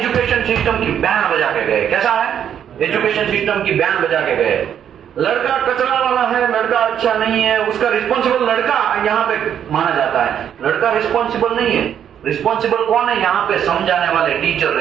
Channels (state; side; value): quieter; left; 9.2 dB